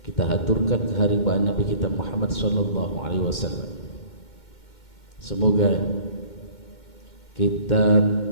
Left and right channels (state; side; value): late; right; 2.1 ms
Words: kita haturkan kehadirat Nabi kita Muhammad sallallahu alaihi wasallam. Semoga kita